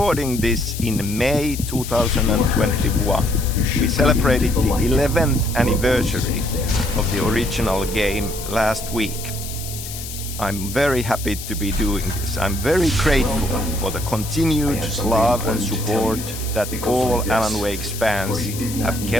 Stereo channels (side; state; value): left; noise; hiss, 10 dB below the sound